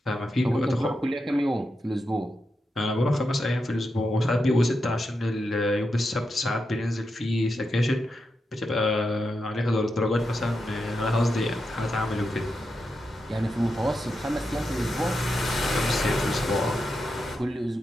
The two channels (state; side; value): normal; both; correlation 0.87